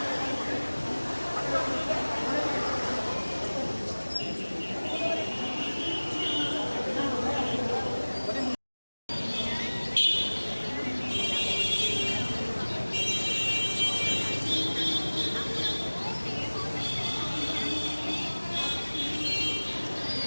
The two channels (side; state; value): both; inverted; correlation -1.00